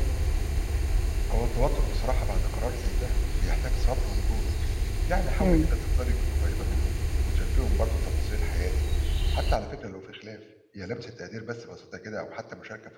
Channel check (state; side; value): identical; both; correlation 1.00